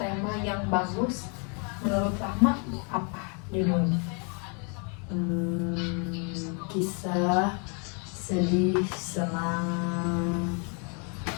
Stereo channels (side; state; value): right; quieter; 37.0 dB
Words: yang bagus menurut Rama apa judulnya? Kisah sedih, senang,